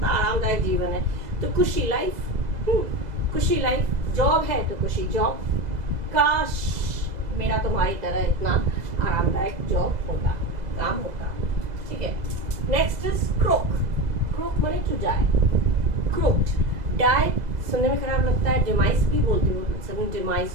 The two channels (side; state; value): left; late; 2.0 ms